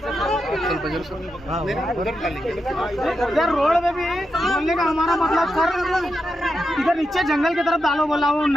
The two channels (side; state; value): both; normal; correlation 0.86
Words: इधर रोड में भी बोलने का हमारा मतलब सर इधर नीचे जंगल की तरफ डालो, बोला वो